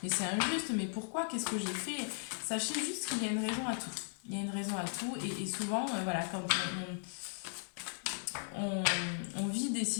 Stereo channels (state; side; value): silent; right; digital silence